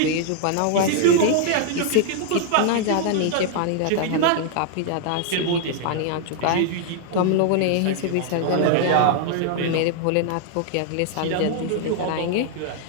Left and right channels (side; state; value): both; different; correlation 0.00